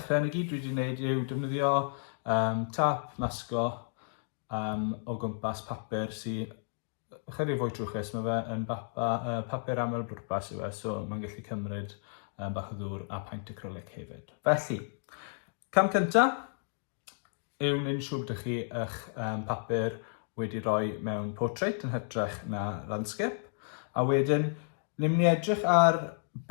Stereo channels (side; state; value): right; silent; digital silence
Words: ni gyd dwi wedi gwneud yw defnyddio tap masgo o gwmpas papur sydd chydig fwy trwchus. Mae fe yn papur aml bwrpas yw e, so mae'n gallu cymryd bach o ddŵr a paint acrylic hefyd. Felly, cam cyntaf yw wneud yn siŵr bod chi eich papur wedi rhoi mewn portrait yn hytrach na landscape. A wedyn, ni'n mynd i edrych ar